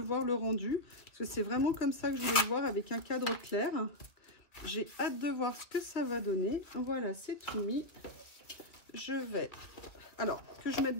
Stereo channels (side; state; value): right; late; 2.2 ms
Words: le rendu, parce que c'est vraiment comme ça que je voulais le voir, avec un cadre clair. J'ai hâte de voir ce que ça va donner. Voilà, c'est tout mis. Je vais... Alors, que je mette